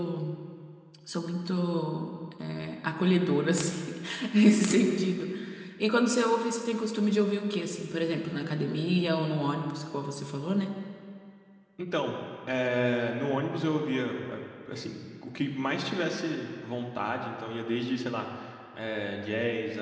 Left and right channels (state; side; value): identical; both; correlation 1.00